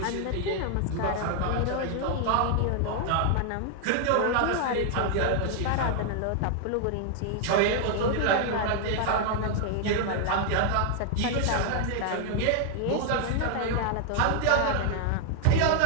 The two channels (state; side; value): different; both; correlation 0.00